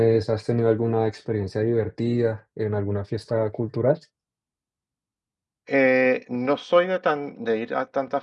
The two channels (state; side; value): identical; both; correlation 1.00